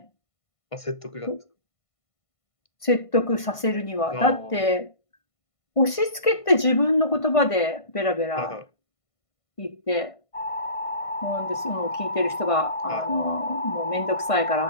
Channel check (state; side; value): late; right; 1.5 ms